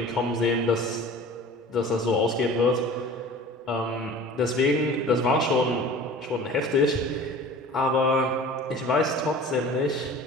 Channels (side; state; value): both; normal; correlation 0.41